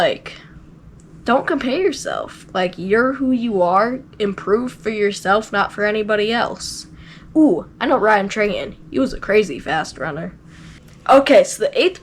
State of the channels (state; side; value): identical; both; correlation 1.00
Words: don't compare yourself. Like, you're who you are. Improve for yourself, not for anybody else. Ooh, I know Ryan Trahan. He was a crazy fast runner. Okay, so the 8th